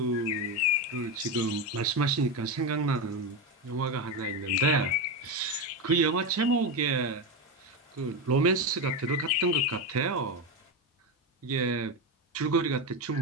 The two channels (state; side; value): normal; both; correlation 0.14